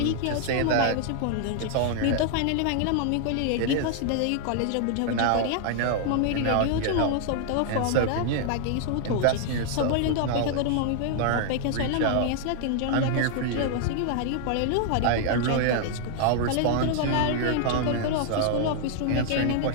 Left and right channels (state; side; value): different; both; correlation 0.00